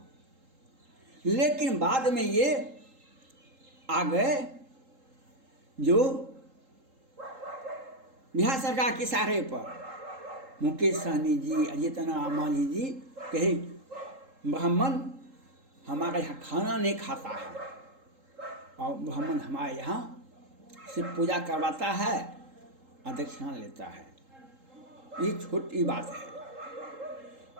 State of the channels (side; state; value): left; late; 3.8 ms